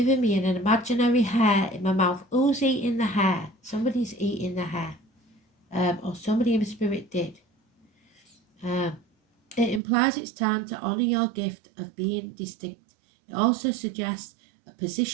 me an imaginary hair in my mouth. Who's eating the hair? Somebody's eating the hair. Or somebody in the spirit did. It implies it's time to honour your gift of being distinct. It also suggests a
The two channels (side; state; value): left; drops out; at 9.8 s